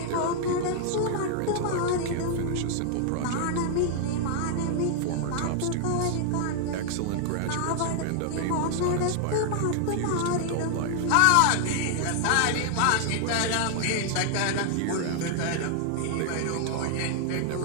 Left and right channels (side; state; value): both; different; correlation 0.00